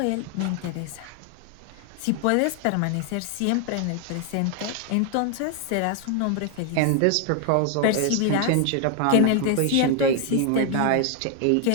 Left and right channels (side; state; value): both; different; correlation 0.00